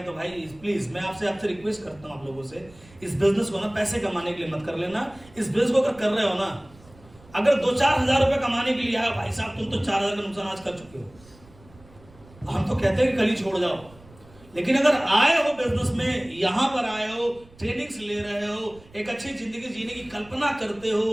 तो भाई प्लीज मैं आपसे रिक्वेस्ट करता हूं आप लोगों से, इस बिजनेस को ना पैसे कमाने के लिए मत कर लेना। इस बिजनेस को अगर कर रहे हो ना, अगर 2-4 हजार रुपए कमाने के लिए आया, भाई साहब तुम तो 4 हजार का नुकसान आज कर चुके हो, हम तो कहते हैं कि कल ही छोड़ जाओ। लेकिन अगर आए हो बिजनेस में, यहां पर आए हो, ट्रेनिंग्स ले रहे हो, एक अच्छी जिंदगी जीने की कल्पना करते हो,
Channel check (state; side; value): noise; right; rumble, 24 dB below the sound